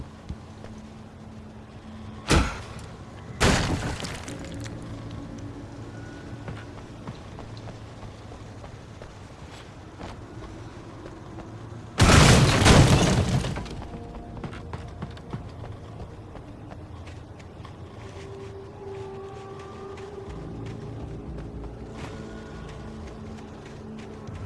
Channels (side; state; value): both; identical; correlation 1.00